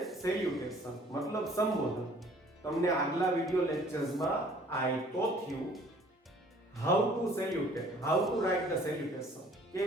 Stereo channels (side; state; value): both; normal; correlation 0.55